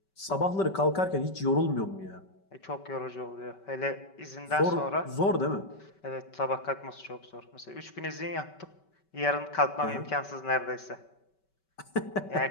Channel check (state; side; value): late; right; 5.2 ms